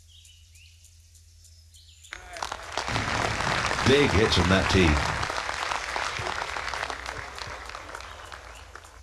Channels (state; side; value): identical; both; correlation 1.00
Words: Big hits on that tee.